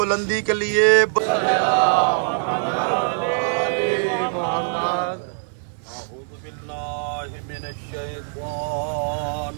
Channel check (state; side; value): silent; left; 57 dB below the other